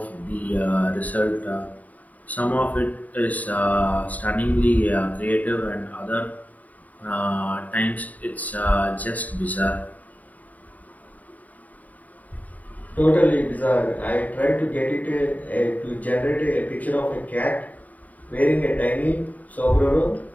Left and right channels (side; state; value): right; late; 0.074 ms